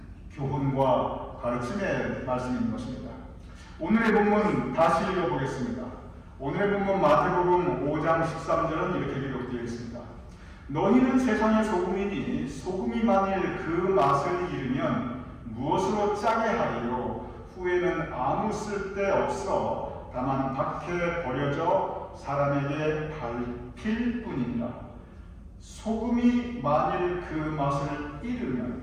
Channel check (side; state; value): both; identical; correlation 1.00